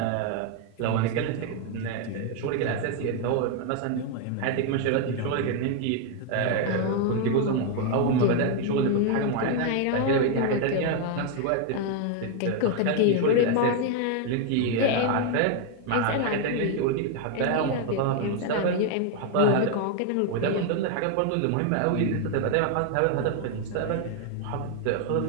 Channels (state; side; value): different; both; correlation 0.00